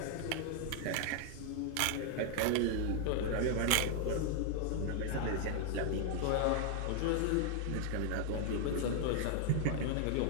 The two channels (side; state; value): both; different; correlation 0.00